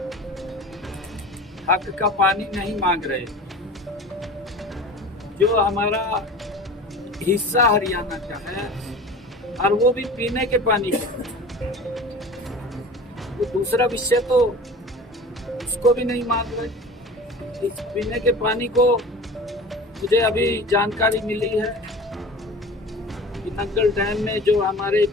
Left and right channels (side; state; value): both; normal; correlation 0.38